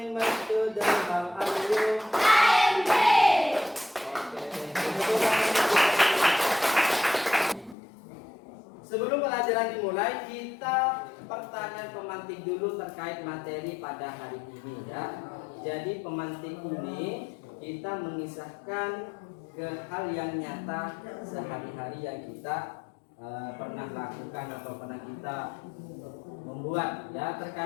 my students. How are you? I'm great. Sebelum pelajaran dimulai, kita pertanyaan pemantik dulu terkait materi pada hari ini ya. Jadi pemantik ini kita mengisahkan ke hal yang nyata sehari-hari yang kita pernah lakukan atau pernah kita membuat ya,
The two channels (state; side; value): drops out; right; at 7.8 s